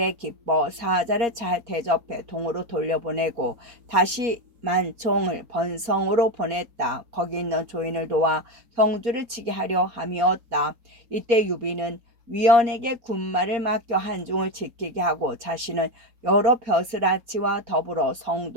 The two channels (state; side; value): late; left; 4.2 ms